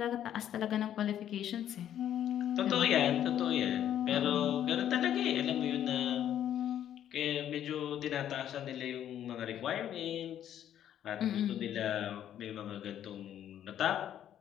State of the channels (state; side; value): quieter; right; 10.6 dB